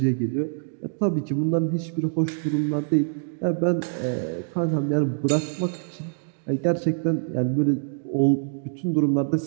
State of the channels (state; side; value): silent; left; digital silence